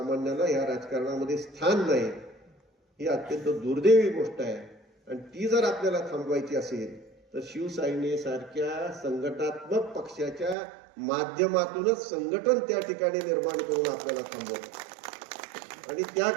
या राजकारणामध्ये स्थान नाही. ही अत्यंत दुर्दैवी गोष्ट आहे. आणि ती जर आपल्याला थांबवायची असेल, तर शिवसेनेसारख्या संघटनात्मक पक्षाच्या माध्यमातूनच संघटन त्या ठिकाणी निर्माण करून आपल्याला थांबवतं. आणि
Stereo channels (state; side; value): drops out; left; at 10.6 s